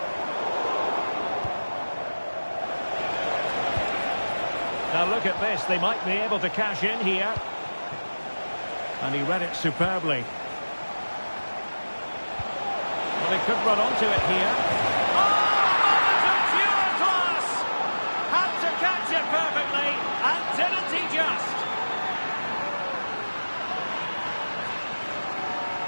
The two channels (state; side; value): inverted; both; correlation -1.00